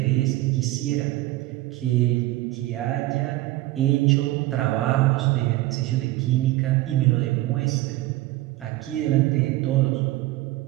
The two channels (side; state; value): left; quieter; 17.2 dB